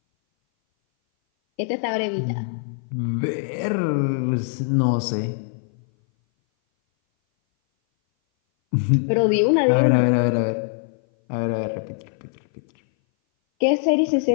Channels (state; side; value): silent; right; 59 dB below the other